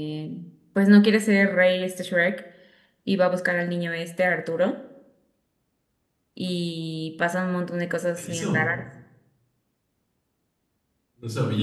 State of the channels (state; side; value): identical; both; correlation 1.00